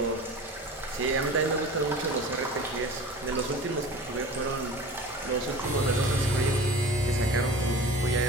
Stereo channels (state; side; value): normal; both; correlation 0.38